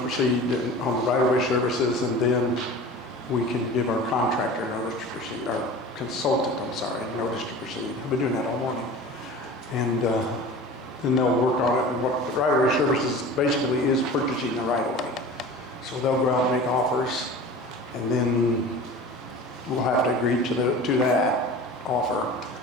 proceed on the right-of-way services, and then we can give our contractor notice to proceed, our consultant, notice to proceed. I've been doing that all morning. And then they'll work on it. And what the right-of-way services basically is purchasing the right-of-way. So they'll go out and make offers, and then we'll have to agree to that offer.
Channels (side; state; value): both; normal; correlation 0.38